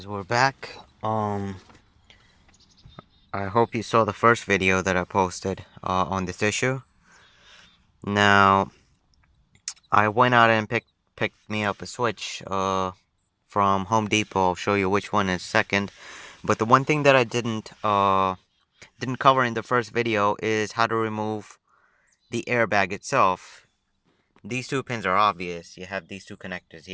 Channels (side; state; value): both; identical; correlation 1.00